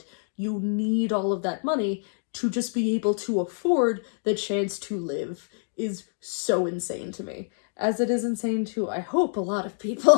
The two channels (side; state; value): right; silent; digital silence